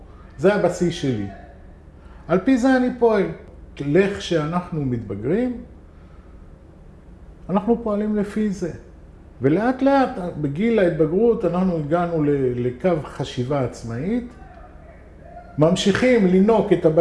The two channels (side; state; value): both; identical; correlation 1.00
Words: זה הבסיס שלי. על פי זה אני פועל. לך שאנחנו מתבגרים, אנחנו פועלים לפי זה. ולאט לאט, בגיל ההתבגרות, אנחנו הגענו לקו חשיבה עצמאית, ממשיכים לנוק את